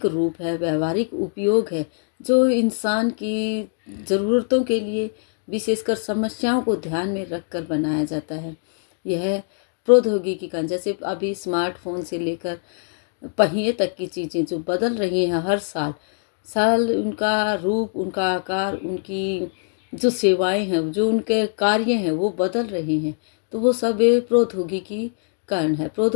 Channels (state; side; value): silent; right; 62 dB below the other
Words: रूप है, व्यवहारिक उपयोग है, जो इंसान की ज़रूरतों के लिए विशेषकर समस्याओं को ध्यान में रखकर बनाया जाता है। यह प्रौद्योगिकी का, जैसे अभी स्मार्टफोन से लेकर पहिए तक की चीज़ें जो बदल रही हैं हर साल उनका रूप, उनका आकार, उनकी जो सेवाएं हैं, जो उनके कार्य हैं, वो बदल रहे हैं। तो वो सब प्रौद्योगिकी कारण है।